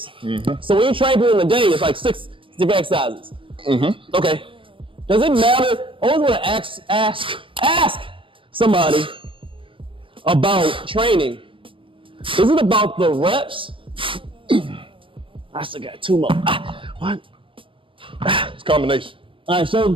So when you train people in the day, it's like 6 different exercises. Okay. Does it matter? I always want to ask somebody about training. Is it about the reps? I still got 2 more. One. It's combination. All right,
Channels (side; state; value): left; late; 0.25 ms